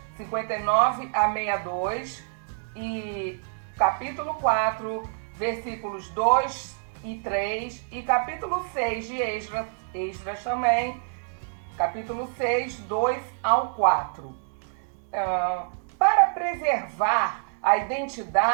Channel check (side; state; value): left; silent; digital silence